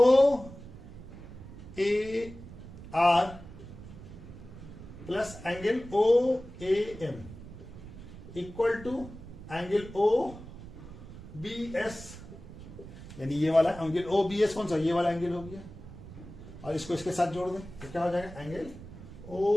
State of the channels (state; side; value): noise; right; rumble, 14 dB below the sound